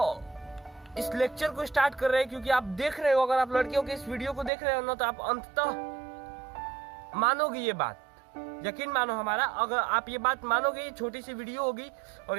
इस लेक्चर को स्टार्ट कर रहे हैं क्योंकि आप देख रहे हो, अगर आप लड़कियों के इस वीडियो को देख रहे हो ना, तो आप अंततः मानोगे ये बात, यकीन मानो हमारा। अगर आप ये बात मानोगे, ये छोटी सी वीडियो होगी, और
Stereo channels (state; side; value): drops out; left; at 4.5 s